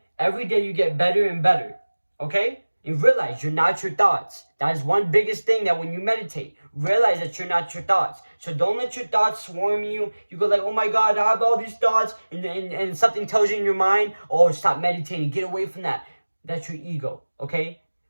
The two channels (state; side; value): inverted; both; correlation -1.00